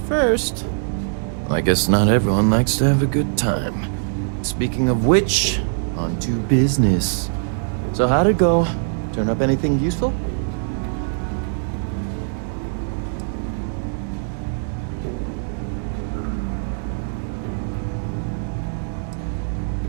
I guess not everyone likes to have a good time. Speaking of which, on to business. So how'd it go? Turn up anything useful?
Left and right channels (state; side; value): silent; left; digital silence